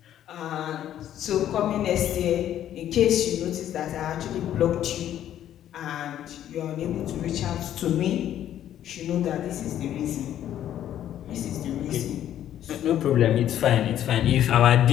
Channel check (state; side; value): quieter; right; 11.3 dB